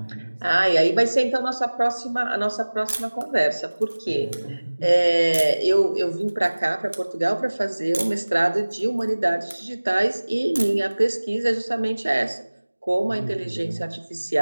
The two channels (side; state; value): both; inverted; correlation -1.00